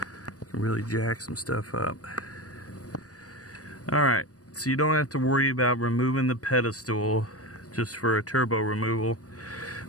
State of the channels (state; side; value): late; right; 0.67 ms